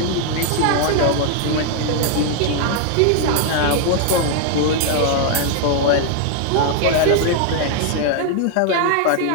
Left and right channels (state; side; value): different; both; correlation 0.00